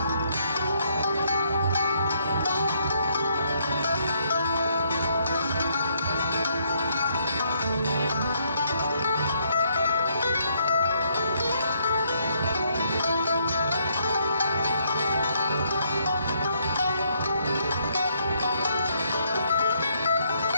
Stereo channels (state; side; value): inverted; both; correlation -0.71